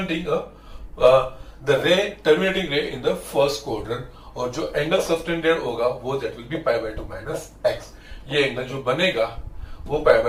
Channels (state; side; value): identical; both; correlation 1.00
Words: the ray terminating ray in the first quadrant, और जो एंगल सबटेंडेड होगा वो that will be π/2 minus x. ये एंगल जो बनेगा वो